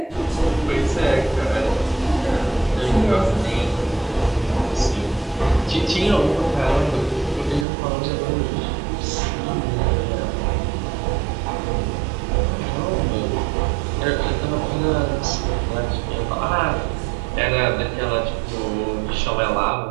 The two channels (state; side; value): drops out; left; at 7.7 s